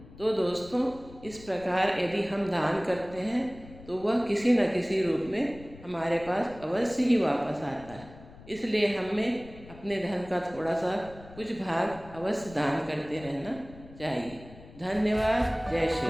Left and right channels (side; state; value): left; noise; rumble, 19 dB below the sound